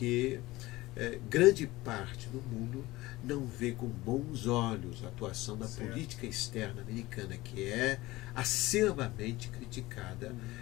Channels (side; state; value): right; quieter; 19.2 dB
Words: grande parte do mundo não vê com bons olhos a atuação da Certo. política externa americana, que é acervamente criticada